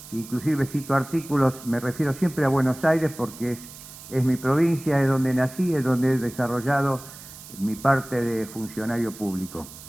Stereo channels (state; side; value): noise; right; hiss, 16 dB below the sound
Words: inclusive cito artículos, me refiero siempre a Buenos Aires porque es mi provincia, es donde nací, es donde he desarrollado mi parte de funcionario público.